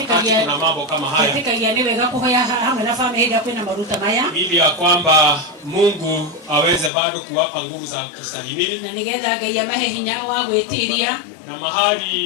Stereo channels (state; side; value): drops out; right; at 6.9 s